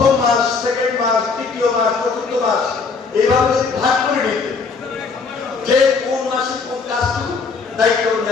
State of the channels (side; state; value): right; quieter; 4.8 dB